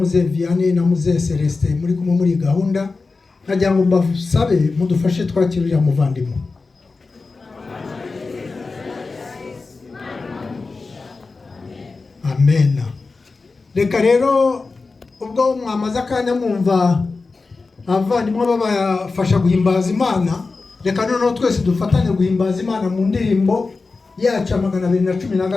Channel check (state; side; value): quieter; right; 4.0 dB